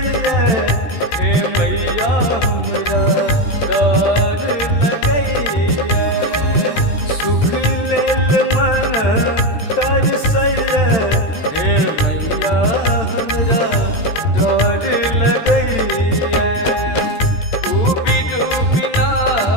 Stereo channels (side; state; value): right; late; 13 ms